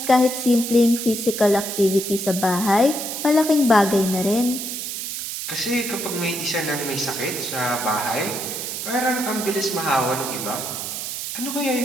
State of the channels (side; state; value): right; noise; hiss, 5 dB below the sound